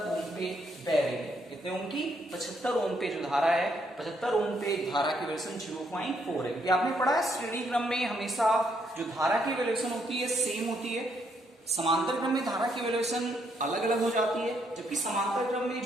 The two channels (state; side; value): normal; both; correlation 0.73